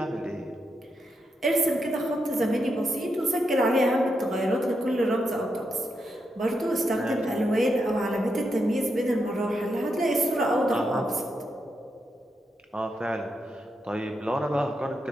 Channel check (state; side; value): normal; both; correlation 0.83